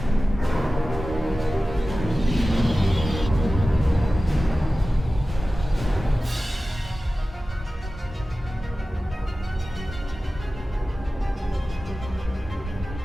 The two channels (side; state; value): both; normal; correlation 0.96